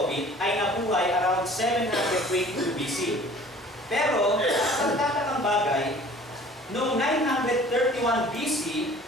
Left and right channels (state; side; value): normal; both; correlation 0.49